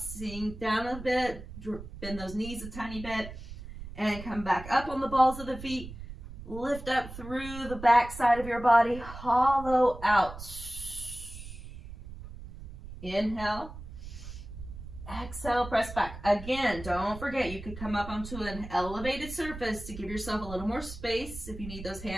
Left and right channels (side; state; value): right; noise; rumble, 12 dB below the sound